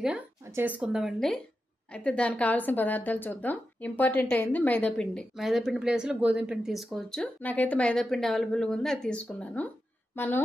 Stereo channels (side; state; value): both; normal; correlation 0.90